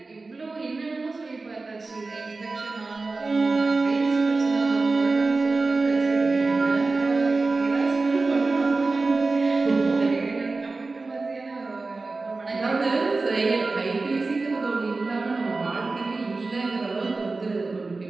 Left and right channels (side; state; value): left; quieter; 3.7 dB